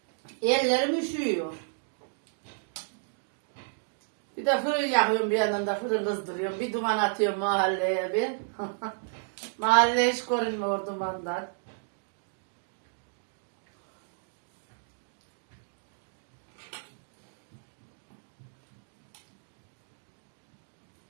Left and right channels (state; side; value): silent; left; digital silence